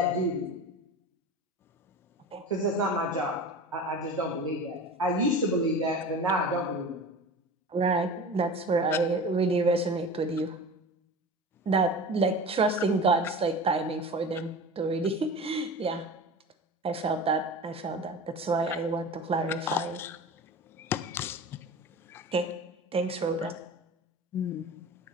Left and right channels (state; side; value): normal; both; correlation 0.34